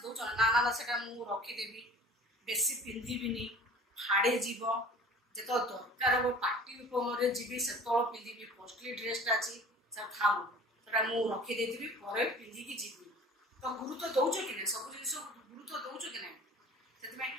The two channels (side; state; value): both; normal; correlation 0.44